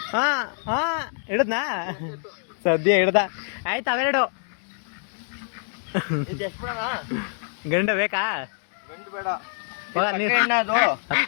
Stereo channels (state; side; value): silent; right; digital silence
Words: ಹಾ ಹಾ ಹಿಡ್ದನಾ ಸದ್ಯ ಹಿಡ್ದ. ಆಯ್ತು ಅವೆರಡು ಗಂಡ ಬೇಕಾ?